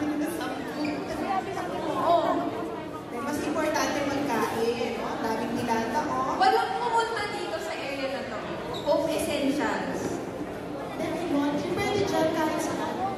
sa Oo. mas importante magkain. No? Daming nilata. Oh. Walang pumunta dito sa area na to. Home Essentials. Pwede dyan kahit saan.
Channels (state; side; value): identical; both; correlation 1.00